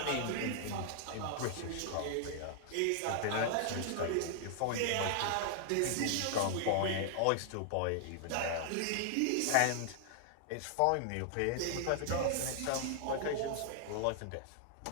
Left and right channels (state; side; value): different; both; correlation 0.00